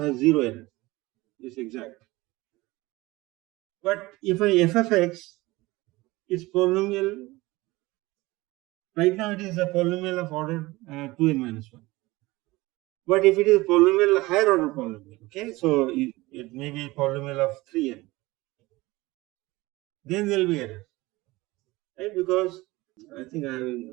0 error. It's exact. But if f of x is polynomial, right now it is a polynomial of order 2n minus 1. But if it is a polynomial, higher order polynomial, okay, so it may be a polynomial of 3n, then there will be error, right? Because I think I have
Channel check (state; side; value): quieter; left; 20.5 dB